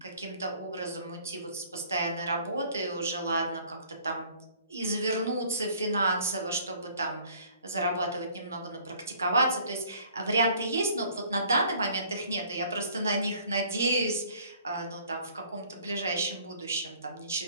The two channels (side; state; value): both; inverted; correlation -0.56